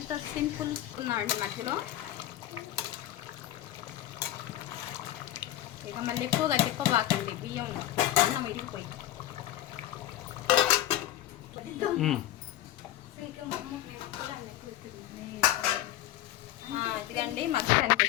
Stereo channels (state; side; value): quieter; right; 13.8 dB